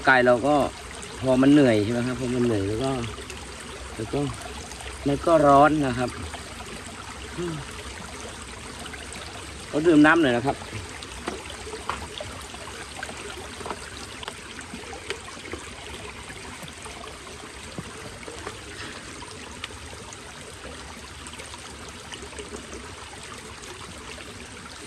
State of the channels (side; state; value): both; identical; correlation 1.00